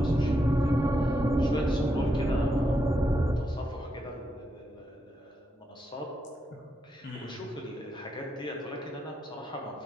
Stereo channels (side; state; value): both; normal; correlation 0.83